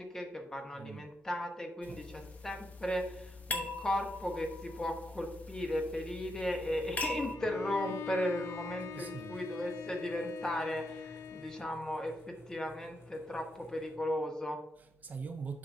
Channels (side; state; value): both; normal; correlation 0.81